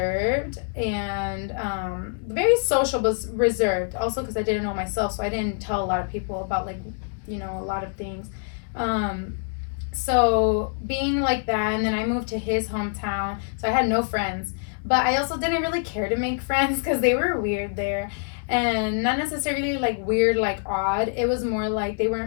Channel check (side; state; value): right; silent; digital silence